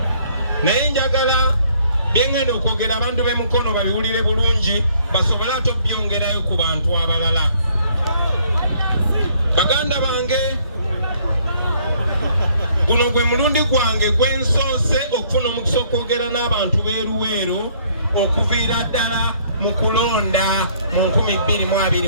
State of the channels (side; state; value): both; inverted; correlation -0.63